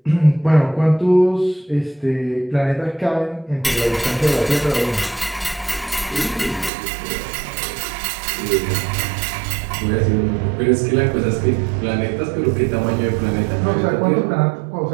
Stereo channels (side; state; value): left; drops out; at 6.7 s